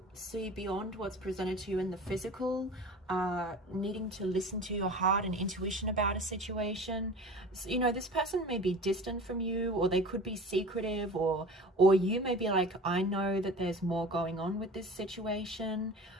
see beyond what's presented to you in the physical, needing to listen to your heart and intuition about a situation. So, you know, this person may be distant from you, or they could be secretive, or you may be like, I know that there's more going on with this situation.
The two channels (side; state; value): both; normal; correlation 0.38